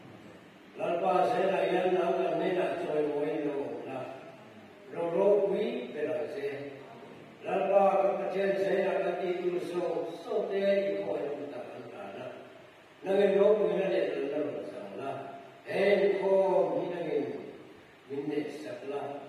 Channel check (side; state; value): both; identical; correlation 1.00